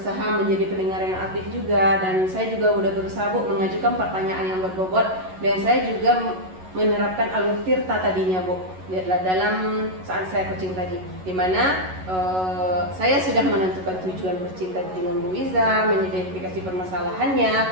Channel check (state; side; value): late; left; 11 ms